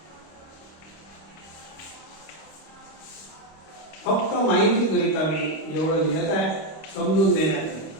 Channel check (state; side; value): late; right; 25 ms